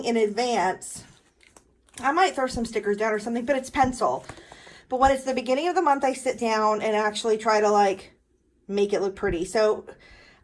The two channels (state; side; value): identical; both; correlation 1.00